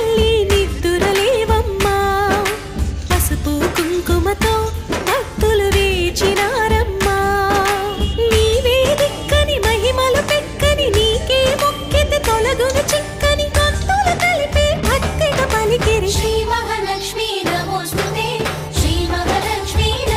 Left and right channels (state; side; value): identical; both; correlation 1.00